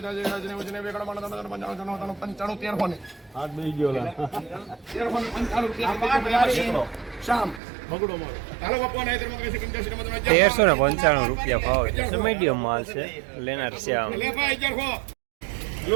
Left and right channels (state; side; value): drops out; left; at 7.6 s